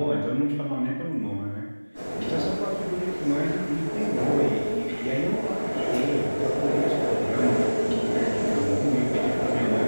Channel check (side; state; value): both; inverted; correlation -1.00